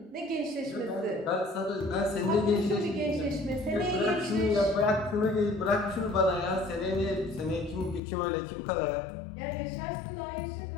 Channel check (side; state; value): right; drops out; at 8.0 s